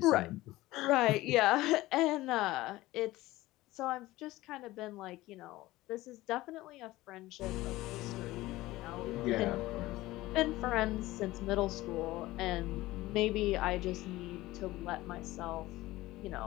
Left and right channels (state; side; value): quieter; right; 17.9 dB